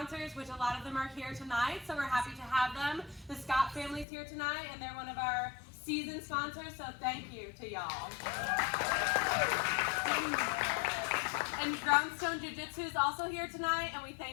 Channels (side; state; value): right; drops out; at 4.0 s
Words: which a lot of them are here tonight, so we're happy to have them. The Scott family's here tonight, and they're one of our season sponsors, so thank you to y'all. And Groundstone Jiu-Jitsu is also here tonight, and we